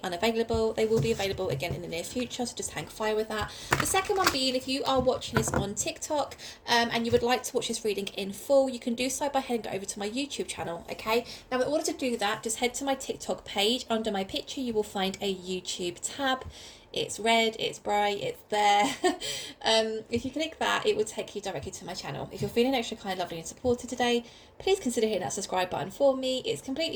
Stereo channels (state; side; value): identical; both; correlation 1.00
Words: unavailable. They will be available again in the near future, so just hang fire with that. The second one being, if you are watching this on TikTok and you would like to watch this reading in full, you can do so by heading over to my YouTube channel, okay? Now, in order to do that, just head to my TikTok page. Under my picture, you will find a YouTube tab. It's red, it's bright, it's there. If you click that, it will take you directly to my channel. If you're feeling extra kind, lovely and supported today, please consider hitting that subscribe button for me. It's